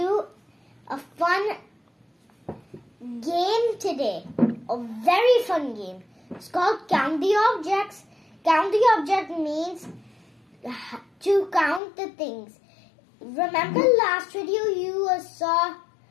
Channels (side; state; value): right; drops out; at 11.8 s